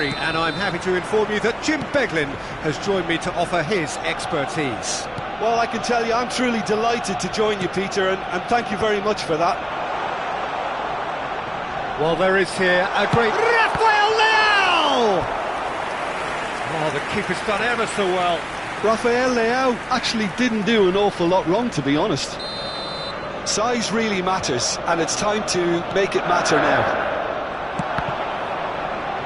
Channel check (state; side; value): identical; both; correlation 1.00